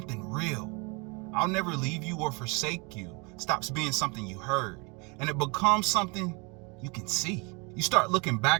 real. I'll never leave you or forsake you stops being something you heard, and it becomes something you can see. You start looking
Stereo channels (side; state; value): left; quieter; 30.3 dB